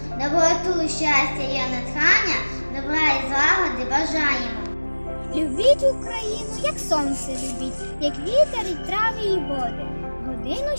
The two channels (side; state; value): both; inverted; correlation -1.00